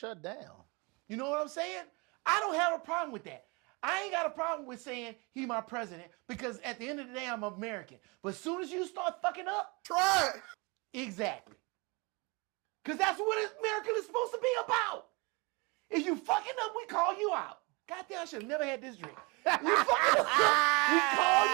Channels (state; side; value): quieter; left; 28.5 dB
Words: down. You know what I'm saying? I don't have a problem with that. I ain't got a problem with saying he my president because at the end of the day, I'm American. But as soon as you start fucking up, try it. Exactly. Because that's what America is supposed to be about. If you fucking up, we call you out. Goddamn, I should have never had this drink. You fucking up, we call